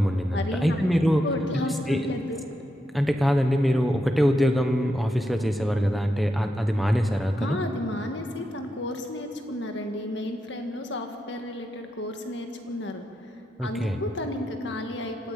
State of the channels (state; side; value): normal; both; correlation 0.85